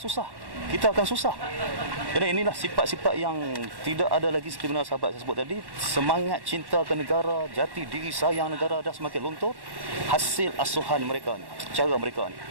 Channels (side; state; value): left; late; 1.1 ms